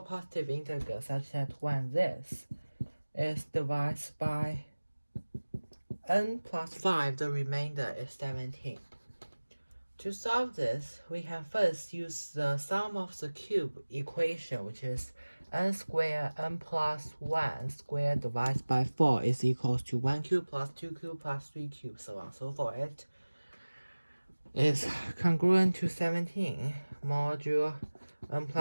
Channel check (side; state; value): both; inverted; correlation -1.00